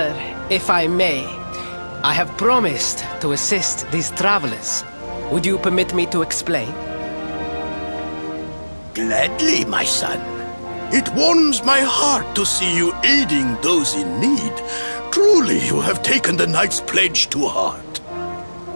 if I may, I have promised to assist these travelers. Would you permit me to explain? Gladly, my son. It warms my heart to see you aiding those in need. Truly, you have taken the knight's pledge to heart.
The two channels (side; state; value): both; inverted; correlation -1.00